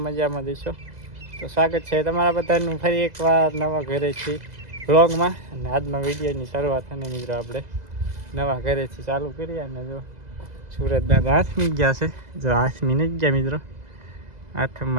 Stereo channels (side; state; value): left; late; 2.0 ms